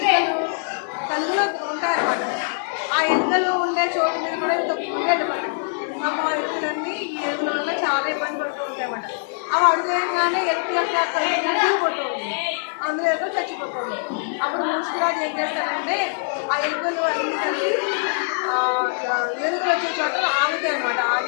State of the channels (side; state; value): right; silent; 63 dB below the other